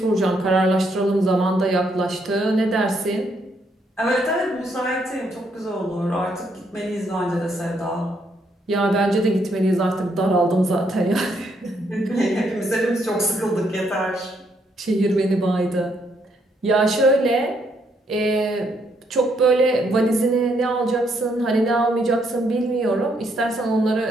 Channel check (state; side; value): normal; both; correlation 0.73